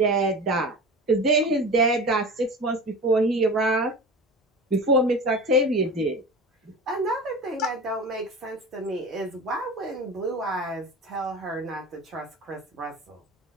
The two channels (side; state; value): both; normal; correlation 0.32